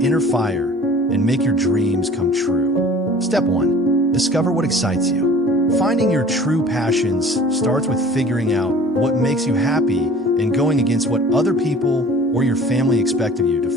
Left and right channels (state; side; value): normal; both; correlation 0.46